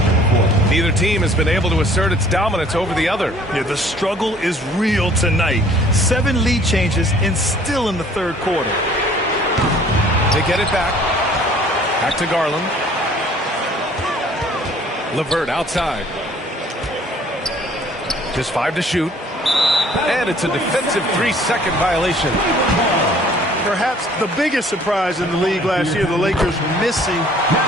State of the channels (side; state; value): both; normal; correlation 0.55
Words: Neither team has been able to assert its dominance over the other. Yeah, the struggle is real tonight. 7 lead changes and still in the third quarter. They get it back. Back to Garland. LeVert outside. Just 5 to shoot. And it's a defensive 3-second violation. Perhaps the biggest surprise in the league last year, the Lakers missing